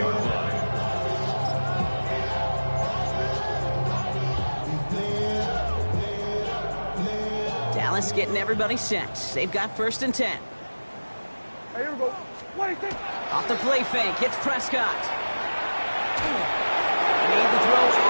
line. Dallas getting everybody set. They've got 1st and 10. Hey, here we go. What do you think? Off the play fake, hits Prescott. Made the throw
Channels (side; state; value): both; inverted; correlation -1.00